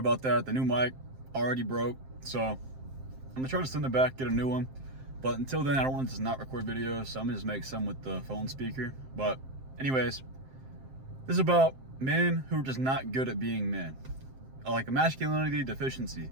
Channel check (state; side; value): late; left; 7.6 ms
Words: that. The new mic already broke, so I'm gonna try to send it back, get a new one. But until then, I don't want to just not record videos, so I'm gonna just make some with the phone speaker. But anyways, this is about men who are just not good at being men, like a masculinity deficiency.